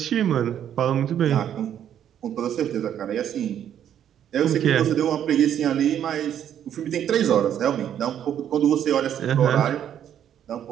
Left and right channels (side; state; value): left; quieter; 9.9 dB